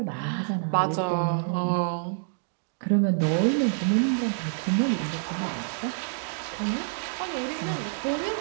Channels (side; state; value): left; silent; digital silence